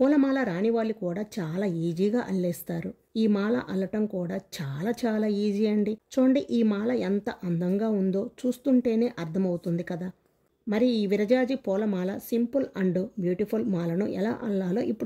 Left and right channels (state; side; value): identical; both; correlation 1.00